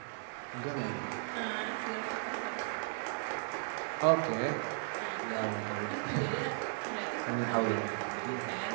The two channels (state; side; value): silent; left; 54 dB below the other